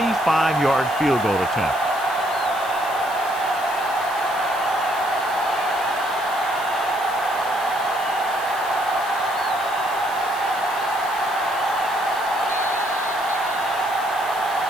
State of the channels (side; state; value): left; noise; hiss, 16 dB below the sound